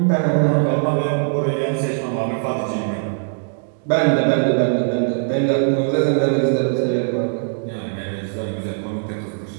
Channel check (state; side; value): silent; left; digital silence